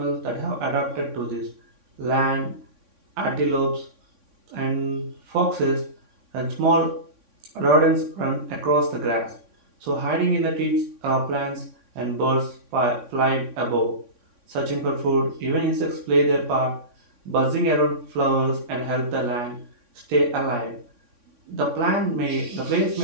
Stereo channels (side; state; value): left; late; 3.6 ms